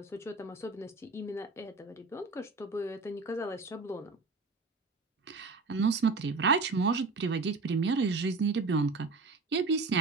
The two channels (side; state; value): left; quieter; 3.9 dB